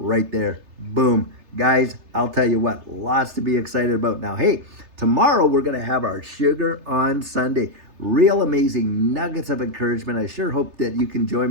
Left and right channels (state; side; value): late; left; 3.3 ms